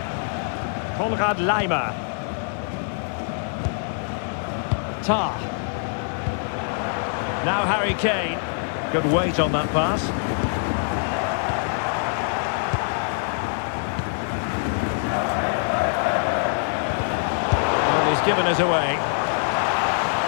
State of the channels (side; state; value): right; silent; 63 dB below the other